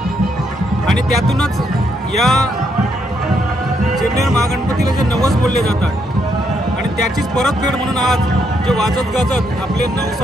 आणि त्यातूनच या चिरनेर महागणपतीला जे नवस बोलले जातात आणि त्याचीच परतफेड म्हणून आज जे वाजत गाजत आपले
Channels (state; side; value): normal; both; correlation 0.76